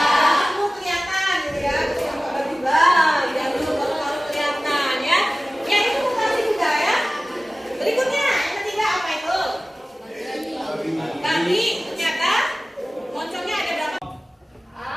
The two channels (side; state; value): both; normal; correlation 0.97